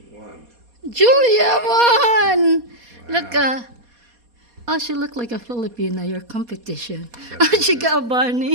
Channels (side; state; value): left; late; 4.2 ms